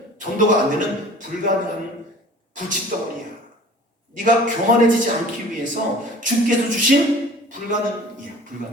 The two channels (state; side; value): normal; both; correlation 0.45